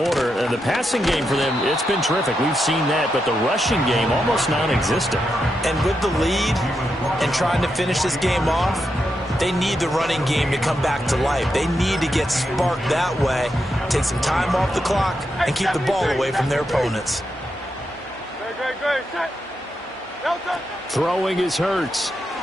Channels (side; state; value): both; normal; correlation 0.85